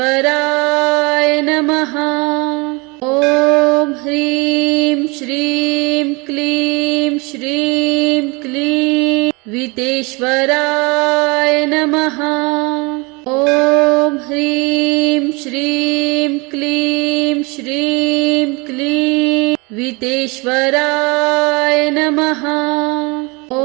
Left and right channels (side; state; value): left; quieter; 27.8 dB